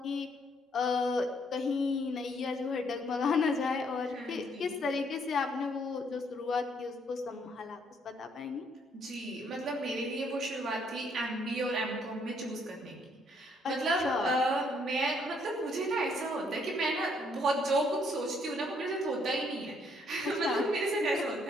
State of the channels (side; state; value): both; normal; correlation 0.69